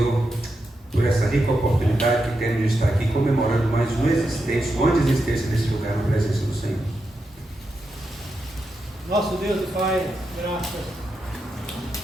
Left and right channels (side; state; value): both; normal; correlation 0.86